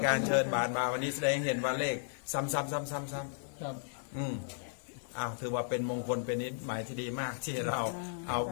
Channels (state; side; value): silent; right; 55 dB below the other